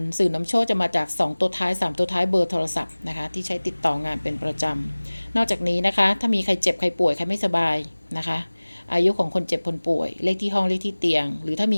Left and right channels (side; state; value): both; inverted; correlation -1.00